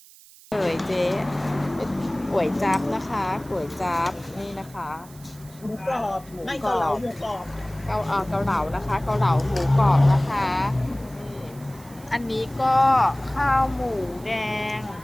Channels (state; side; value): noise; right; hiss, 23 dB below the sound